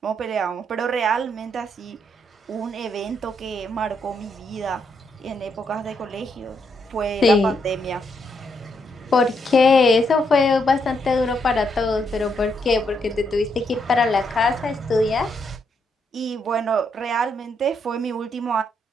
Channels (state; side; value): normal; both; correlation 0.77